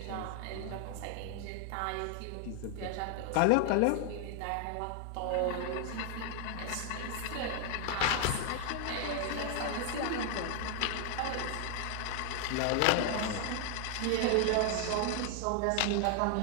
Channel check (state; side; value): different; both; correlation 0.00